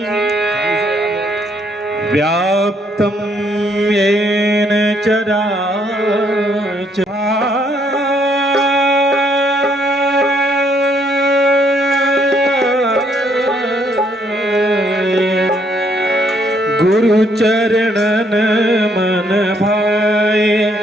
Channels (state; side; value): normal; both; correlation 0.70